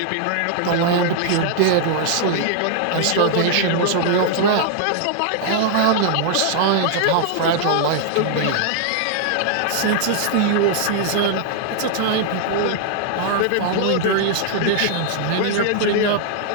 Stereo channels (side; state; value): both; different; correlation 0.00